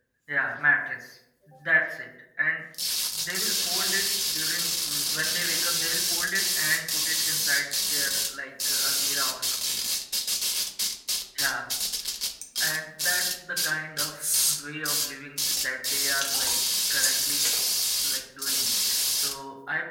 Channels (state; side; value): identical; both; correlation 1.00